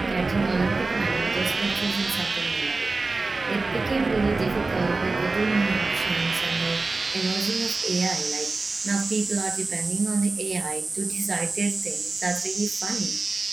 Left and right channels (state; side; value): quieter; left; 3.6 dB